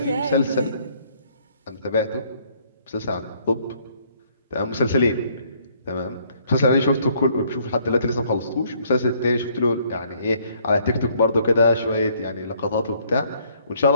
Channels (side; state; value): both; inverted; correlation -0.64